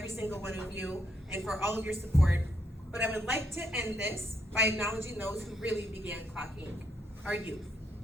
single one of you and for all of your support. But I would like to end this by acknowledging those who really began Clock Inc., our youth.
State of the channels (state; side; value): normal; both; correlation 0.76